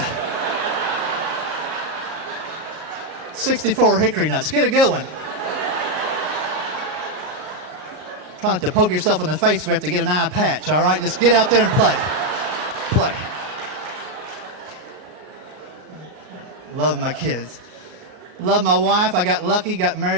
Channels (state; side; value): late; left; 38 ms